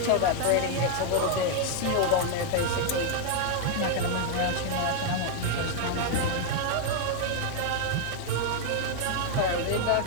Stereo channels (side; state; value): both; different; correlation 0.00